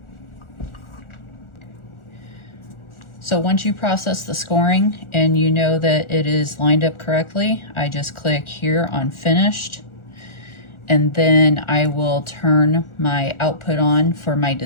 So once you process the scoring and you know that it is lined up correctly, I just click here on finished, and then I will turn my output on for my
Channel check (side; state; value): right; late; 1.4 ms